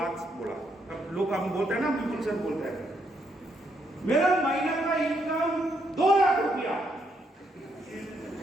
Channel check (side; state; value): both; normal; correlation 0.76